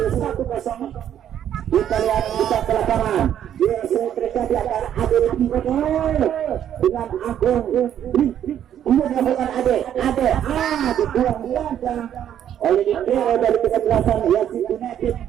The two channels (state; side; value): quieter; left; 10.2 dB